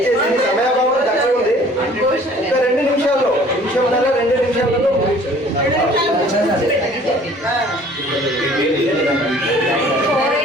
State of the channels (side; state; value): both; normal; correlation 0.52